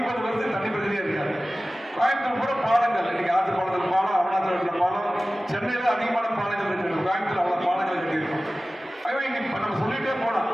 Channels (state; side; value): normal; both; correlation 0.97